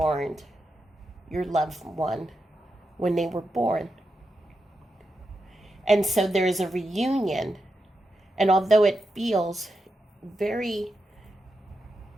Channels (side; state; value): both; normal; correlation 0.87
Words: your loved one when they were born. And so there's a reunion. And although it feels